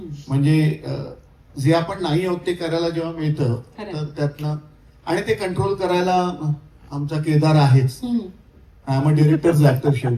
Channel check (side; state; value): both; identical; correlation 1.00